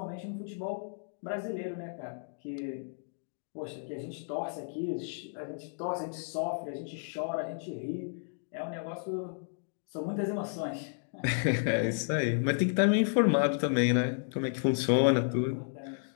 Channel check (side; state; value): right; silent; digital silence